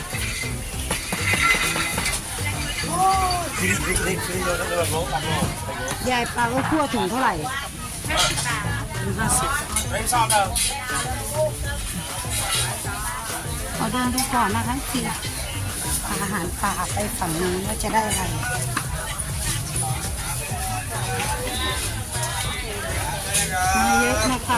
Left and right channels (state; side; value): identical; both; correlation 1.00